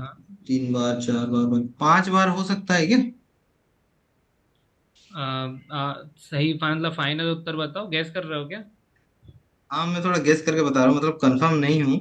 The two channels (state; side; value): identical; both; correlation 1.00